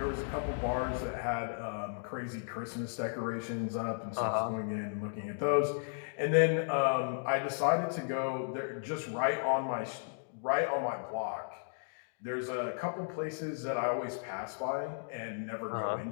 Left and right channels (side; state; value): right; silent; digital silence